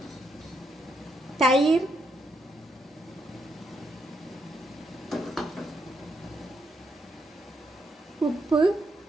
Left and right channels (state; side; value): normal; both; correlation 0.78